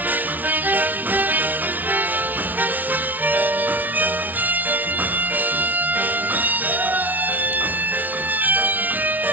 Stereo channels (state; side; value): late; left; 0.080 ms